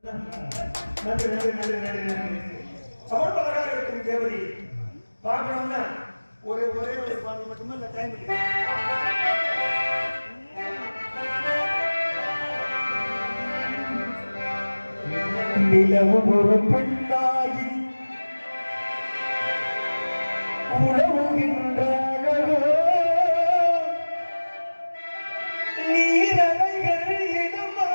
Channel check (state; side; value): inverted; both; correlation -1.00